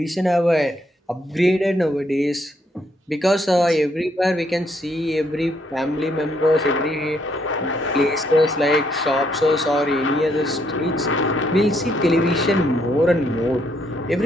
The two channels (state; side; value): normal; both; correlation 0.72